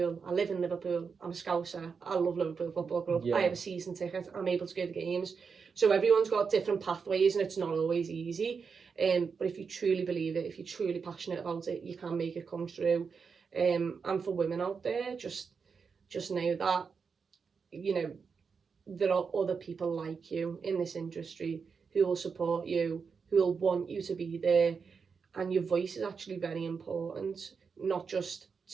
I live in Liverpool. I'm a Scouser. I love Liverpool Football Club. yeah, I have a season ticket. I'm able to go to games. So everyone's got different pathways, and it's not always easy. But if you truly believe it, if you're truly passionate about it, you can make it come true. And for women out there, just know that, there are other people like you in this industry who will support you, who will want you to be there. And your voice is actually very important, not just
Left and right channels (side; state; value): left; quieter; 5.6 dB